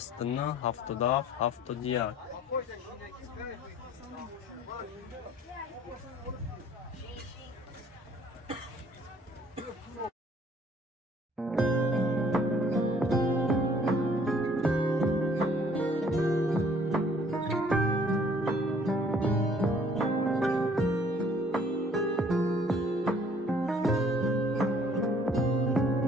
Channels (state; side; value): normal; both; correlation 0.58